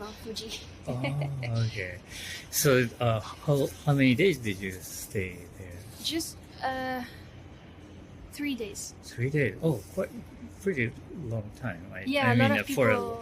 Fuji. Oh, okay. So how many days did you stay there? Just 3 days. 3 days. Oh, quite pretty long time. Yeah, a lot of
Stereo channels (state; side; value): identical; both; correlation 1.00